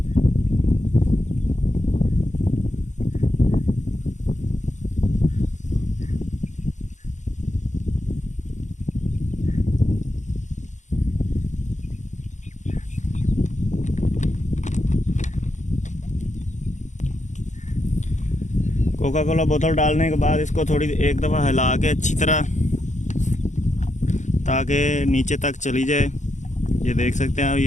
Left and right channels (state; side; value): late; right; 0.35 ms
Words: कोका कोला बोतल डालने के बाद इसको थोड़ी एक दफ़ा हिला के अच्छी तरह ताकि नीचे तक चली जाए। ये देख सकते हैं